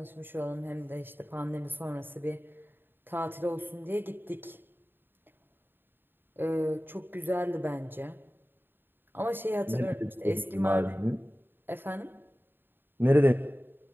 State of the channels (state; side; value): late; left; 0.097 ms